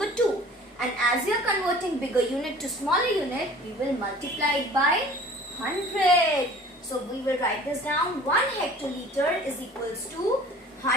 2. And as we are converting bigger unit to smaller unit, we will multiply it by 100. So we will write this down. 1 hectoliter is equals to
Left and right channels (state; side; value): normal; both; correlation 0.47